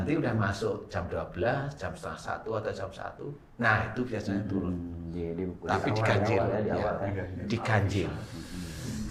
udah masuk jam 12, jam setengah 1 atau jam 1. Nah, itu biasanya turun. Tapi diganjil ya. Diganjil.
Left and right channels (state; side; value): identical; both; correlation 1.00